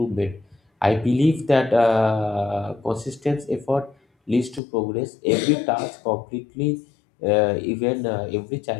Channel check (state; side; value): drops out; right; at 4.6 s